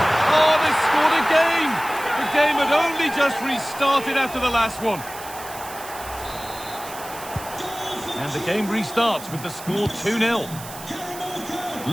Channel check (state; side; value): noise; right; hiss, 14 dB below the sound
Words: Oh, they scored again. The game had only just restarted after the last one. And the game restarts with the score 2-0.